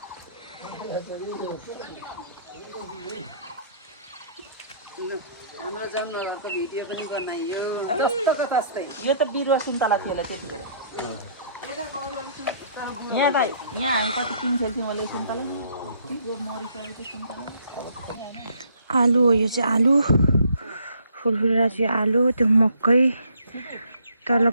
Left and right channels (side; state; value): both; inverted; correlation -0.63